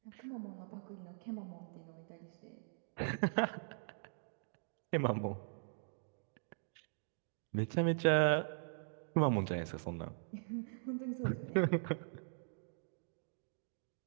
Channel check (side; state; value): left; silent; digital silence